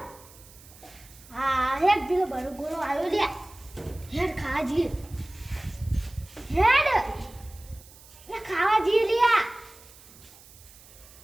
હા હેડ પેલો બરો ગોળો આવ્યો લે, હેડ ખાવા જઈએ, હેડ લે ખાવા જઈએ લે.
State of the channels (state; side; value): noise; right; hiss, 22 dB below the sound